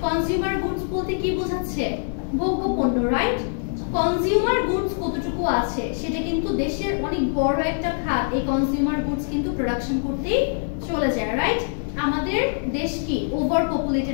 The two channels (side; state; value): right; silent; digital silence